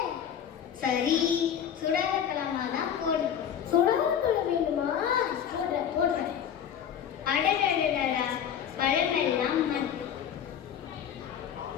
சரி, சுடாத பழமா தான் போடு. சுடாத பழம் வேணுமா? போடுறேன். அடடடடா, பழமெல்லாம் மண்.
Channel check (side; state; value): right; quieter; 8.8 dB